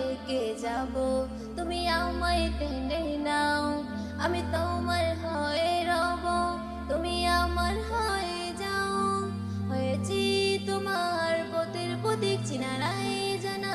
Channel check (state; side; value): identical; both; correlation 1.00